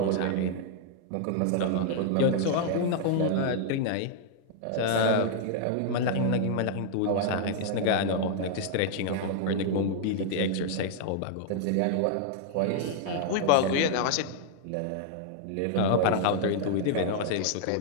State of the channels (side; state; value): both; different; correlation -0.01